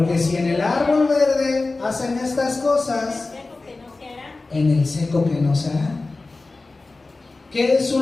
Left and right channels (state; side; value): quieter; right; 3.4 dB